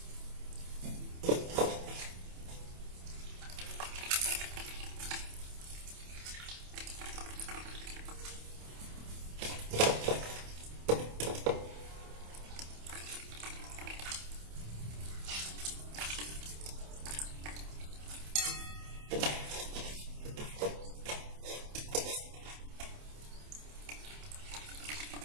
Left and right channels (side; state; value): left; late; 28 ms